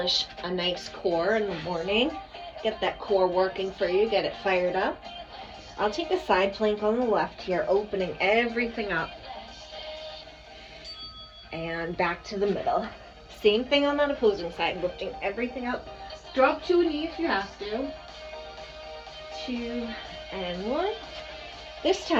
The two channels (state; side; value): identical; both; correlation 1.00